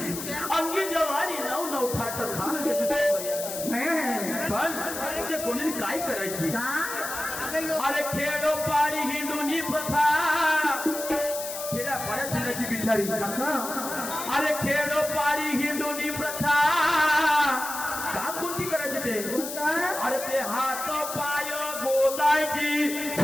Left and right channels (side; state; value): left; noise; hiss, 7 dB below the sound